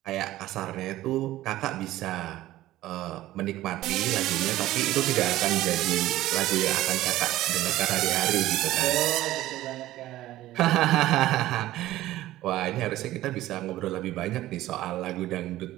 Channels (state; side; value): quieter; left; 15.4 dB